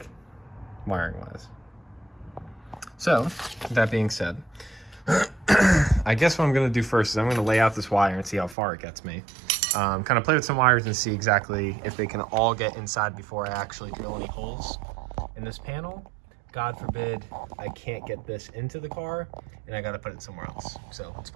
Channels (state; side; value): drops out; left; at 8.6 s